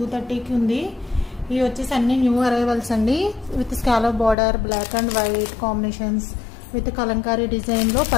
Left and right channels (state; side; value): drops out; right; at 4.4 s